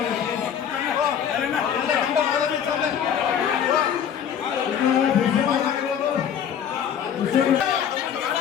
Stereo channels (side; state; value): right; quieter; 8.6 dB